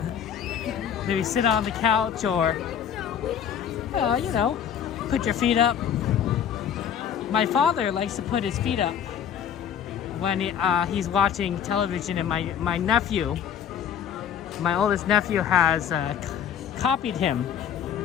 Maybe sit on the couch, or, you know, put your feet up. My father likes to put his feet up when he's watching television, and my nephew, my oldest nephew, has copied him.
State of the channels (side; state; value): right; quieter; 8.7 dB